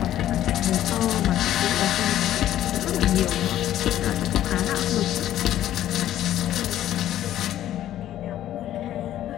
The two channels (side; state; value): right; quieter; 12.4 dB